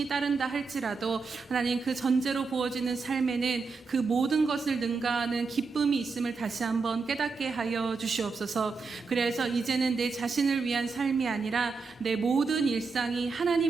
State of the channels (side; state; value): left; quieter; 4.6 dB